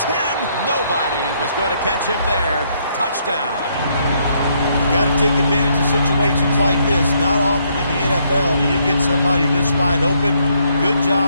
10. Nobody was going to catch him there. Touchdown. Got to take advantage of situations like this. Not often in the NFL do you get somebody this wide open. Good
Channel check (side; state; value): both; inverted; correlation -0.72